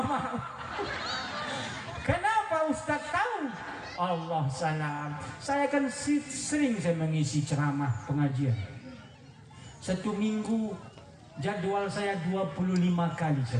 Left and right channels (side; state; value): both; identical; correlation 1.00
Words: Kenapa Ustaz tahu? Allah salam. Saya kan sering saya mengisi ceramah pengajian. 1 minggu jadwal saya 25 kali